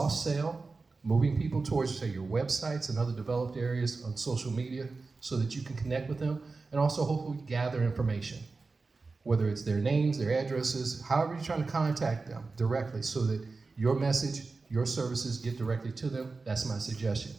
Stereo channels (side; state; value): left; quieter; 4.0 dB